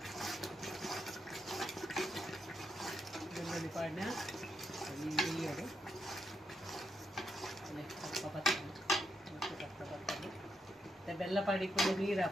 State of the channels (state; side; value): normal; both; correlation 0.81